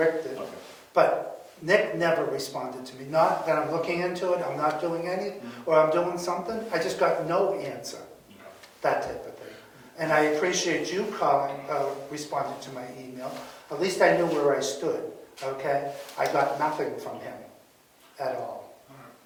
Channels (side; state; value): both; identical; correlation 1.00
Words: did. Okay. But Nick never responded to me. Not that I'm looking into it, I'm not doing anything, or I'm doing something. I just got no answer. That type of thing. And I appreciate you calling, responding to my email. At least I knew where I stood, okay? I got nothing from him at all.